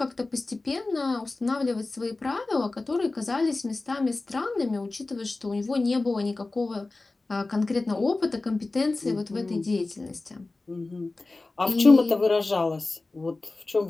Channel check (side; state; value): right; quieter; 3.3 dB